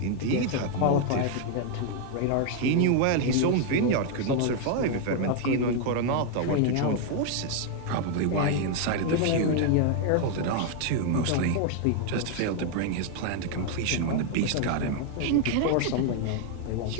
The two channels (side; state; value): both; different; correlation 0.00